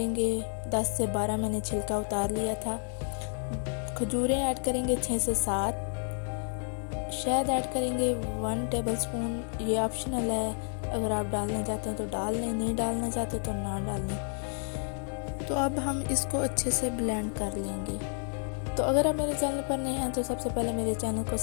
10 से 12, मैंने छिलका उतार लिया था। खजूरें ऐड करेंगे 6 से 7। शहद ऐड करेंगे 1 टेबलस्पून, ये ऑप्शनल है, अगर आप डालना चाहते हैं तो डाल लें, नहीं डालना चाहते तो ना डालें। तो अब हम इसको अच्छे से ब्लेंड कर लेंगे। तो अगर आप मेरे चैनल पर नए हैं तो सबसे पहले मेरे चैनल को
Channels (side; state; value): right; silent; 57 dB below the other